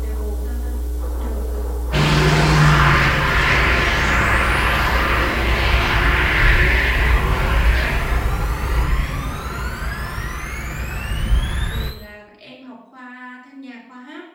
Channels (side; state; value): both; identical; correlation 1.00